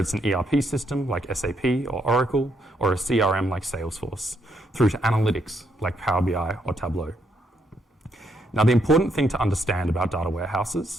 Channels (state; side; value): normal; both; correlation 0.75